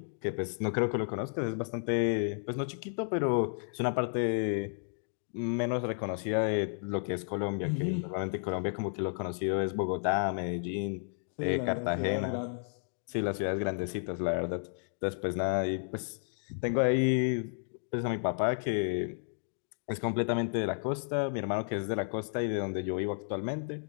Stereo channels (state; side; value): silent; right; digital silence